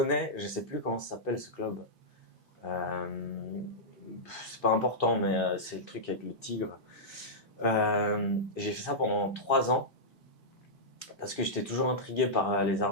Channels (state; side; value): normal; both; correlation -0.11